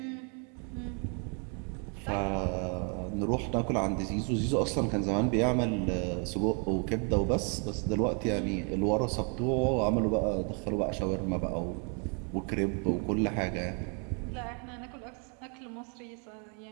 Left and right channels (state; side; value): quieter; left; 38.7 dB